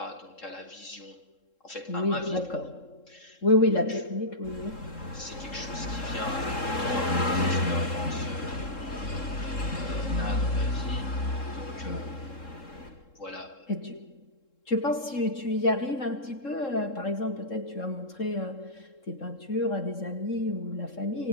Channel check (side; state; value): right; late; 3.7 ms